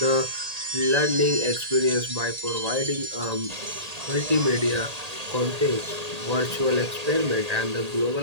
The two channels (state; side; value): late; left; 1.8 ms